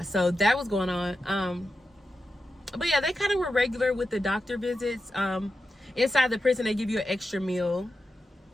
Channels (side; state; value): both; normal; correlation 0.89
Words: so that was going on. But yeah, they kind of were regular with the doctor visits. Inside the prison, they give you an extra meal,